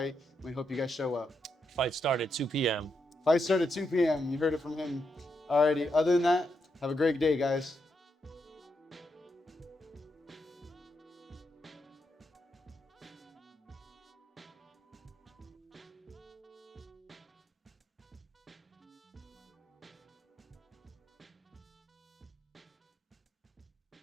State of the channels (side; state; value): both; normal; correlation 0.82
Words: We hope you guys show up. Fight start at 2 p.m. Fight start at 2 p.m. You heard it from him. Alrighty, other than that, have a great day, guys.